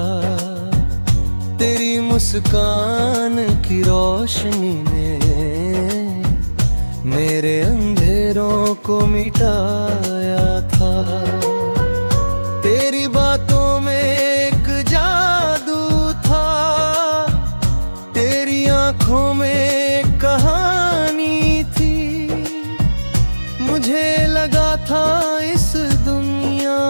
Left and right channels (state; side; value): inverted; both; correlation -1.00